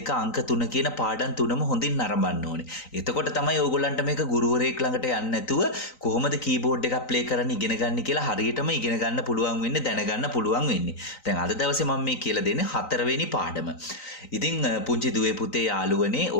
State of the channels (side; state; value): right; late; 3.9 ms